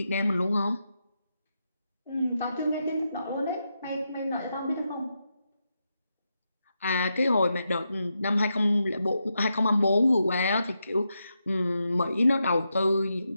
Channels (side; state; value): both; inverted; correlation -0.85